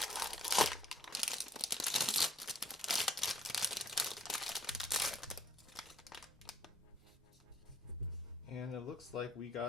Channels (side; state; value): both; normal; correlation 0.61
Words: And it looks like we